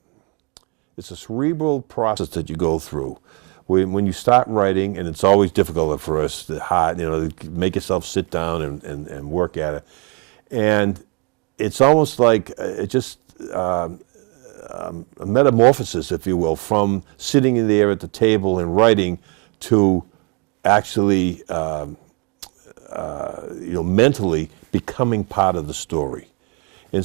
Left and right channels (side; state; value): left; quieter; 33.8 dB